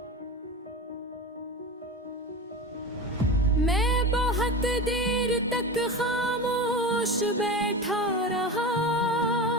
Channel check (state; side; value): normal; both; correlation 0.27